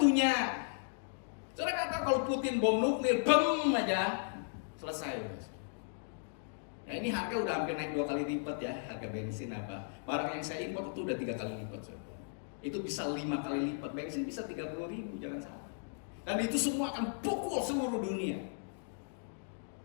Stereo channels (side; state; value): right; silent; digital silence